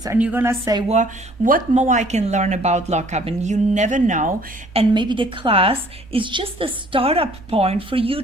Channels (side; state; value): both; normal; correlation 0.57